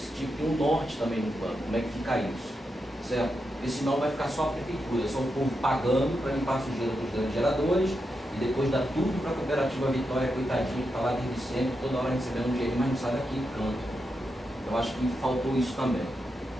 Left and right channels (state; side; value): normal; both; correlation 0.86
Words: tinha que ter um norte também no plano. Como é que fica isso? Certo? Porque senão vai ficar só a prefeitura, só o povo pagando para limpar a sujeira dos grandes geradores e depois dá tudo para a cooperativa Vitória, coitadinha, que está lá desde sempre, toda hora recebendo um dinheiro, mas não sai daqui do canto. Eu acho que faltou isso também.